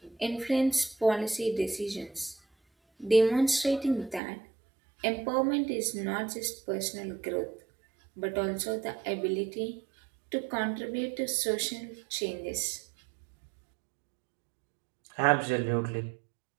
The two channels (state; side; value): drops out; left; at 4.2 s